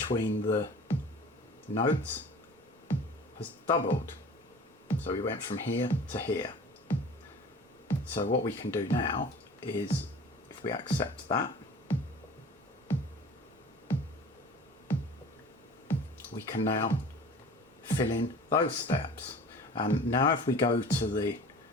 the notes has doubled. So we went from here to here. So what we can do now is, if we accept that, we can now fill in those steps. And now if we go to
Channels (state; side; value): normal; both; correlation 0.43